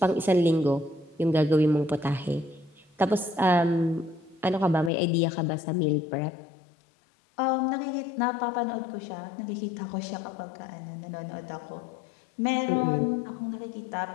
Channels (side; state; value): right; drops out; at 4.9 s